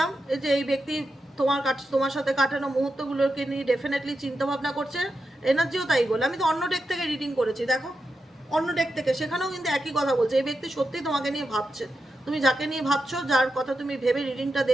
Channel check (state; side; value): normal; both; correlation 0.88